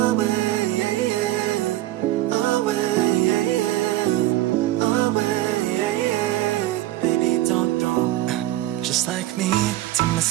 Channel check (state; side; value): quieter; left; 15.8 dB